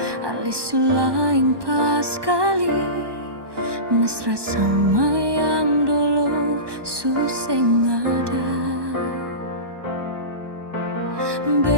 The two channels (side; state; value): left; late; 1.2 ms